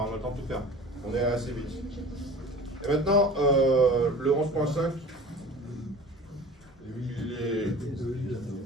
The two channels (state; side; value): normal; both; correlation 0.41